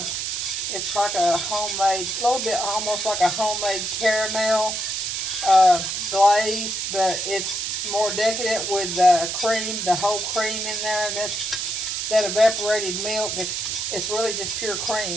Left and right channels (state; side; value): noise; right; hiss, 2 dB below the sound